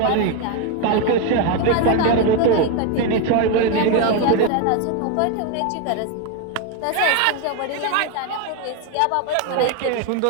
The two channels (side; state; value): both; different; correlation 0.02